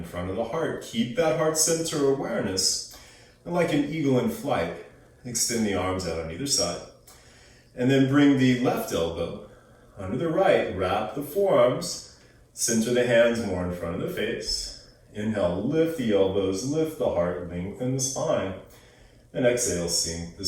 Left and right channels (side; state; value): both; identical; correlation 1.00